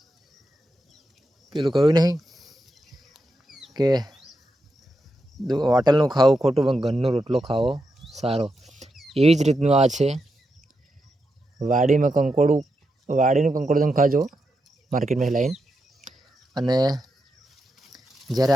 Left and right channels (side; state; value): both; normal; correlation 0.86